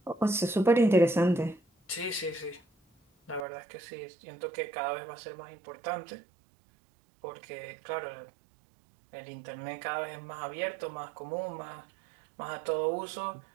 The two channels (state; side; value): drops out; left; at 3.5 s